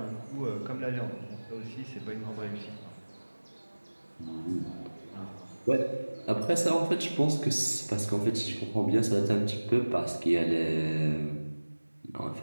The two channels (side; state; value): both; inverted; correlation -1.00